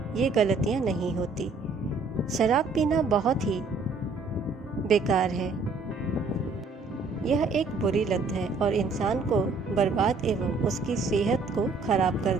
ये गलतियां नहीं होती। शराब पीना बहुत ही बेकार है। यह एक बुरी लत है और इंसान को बर्बाद एवं उसकी सेहत को खराब कर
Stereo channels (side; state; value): left; quieter; 4.0 dB